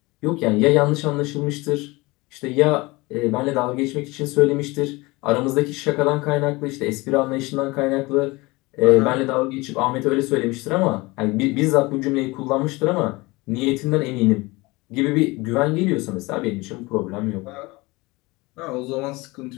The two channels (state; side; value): quieter; right; 23.0 dB